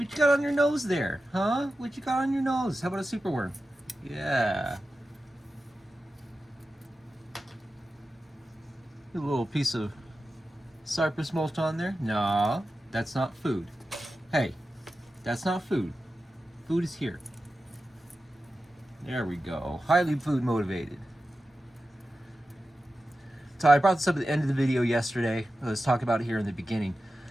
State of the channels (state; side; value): normal; both; correlation 0.93